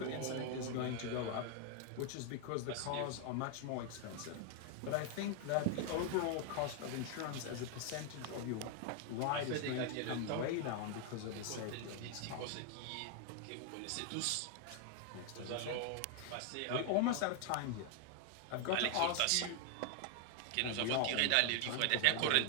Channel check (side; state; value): both; different; correlation 0.00